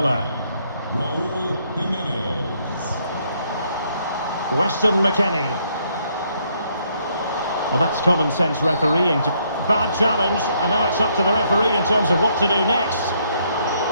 Raul Jimenez. Weston McKennie. Well, that's common sense refereeing. Bad challenge, and now it's up to the referee in terms of what to do next.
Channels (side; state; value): both; inverted; correlation -0.71